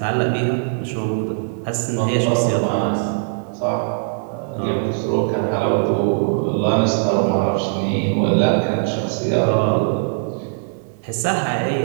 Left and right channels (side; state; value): left; silent; digital silence